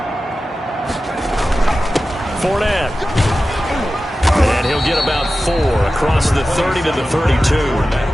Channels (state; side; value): normal; both; correlation 0.94